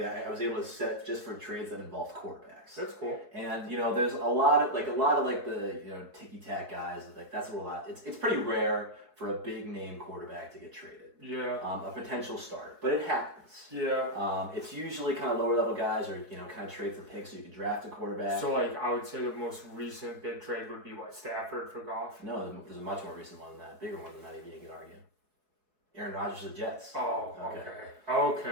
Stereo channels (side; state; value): left; late; 4.7 ms